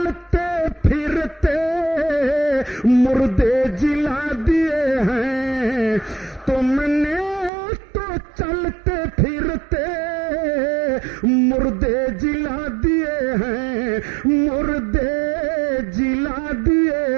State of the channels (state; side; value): drops out; left; at 7.5 s